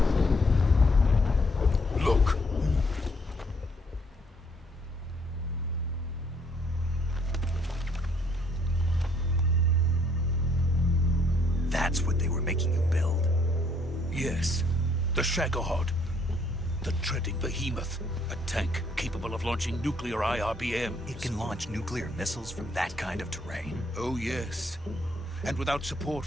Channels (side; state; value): both; normal; correlation 0.67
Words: Look. That's what they were making you build? Yes. The Shagohod. The treading behemoth. A tank capable of launching nuclear IRBMs. It can launch nuclear missiles from that kind of terrain? Oh, yes. And without support